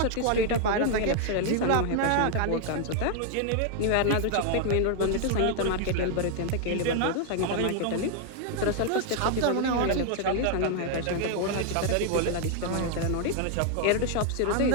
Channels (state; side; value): different; both; correlation 0.00